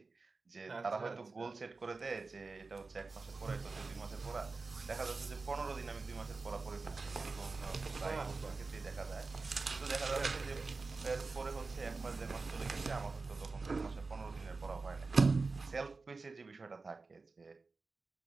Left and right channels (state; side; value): quieter; left; 4.0 dB